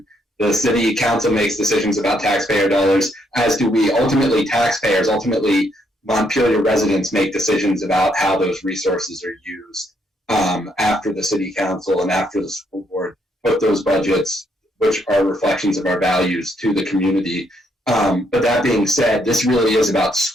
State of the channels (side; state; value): both; normal; correlation 0.73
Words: The city council makes decisions about taxpayer dollars, as do we. Ultimately, taxpayers, Montpelier residents make decisions about how those resources are used after the city council and after the school board put those budgets, which are reflections of our values, to the community. But that being said, this really is about